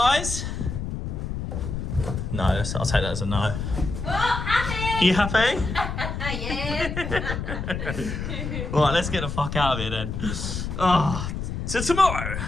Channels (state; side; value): noise; left; rumble, 4 dB below the sound